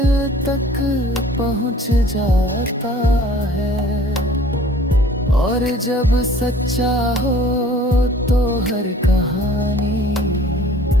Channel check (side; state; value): both; normal; correlation 0.50